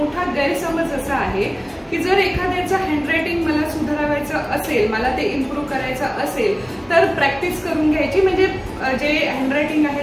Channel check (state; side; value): identical; both; correlation 1.00